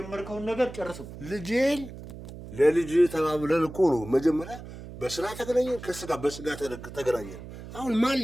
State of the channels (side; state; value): right; noise; hum, 13 dB below the sound